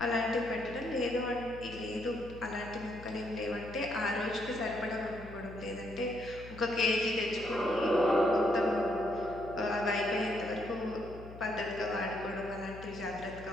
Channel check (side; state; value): left; noise; hum, 15 dB below the sound